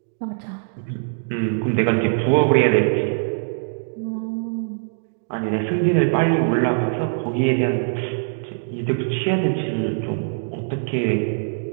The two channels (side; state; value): left; silent; digital silence